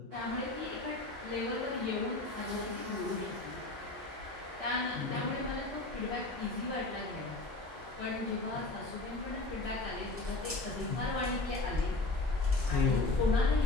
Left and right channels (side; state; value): right; quieter; 3.1 dB